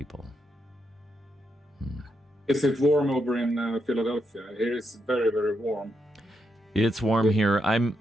Is it warm over in Philadelphia? Here it's very, very warm. It's warm here. I'm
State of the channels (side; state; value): both; normal; correlation 0.81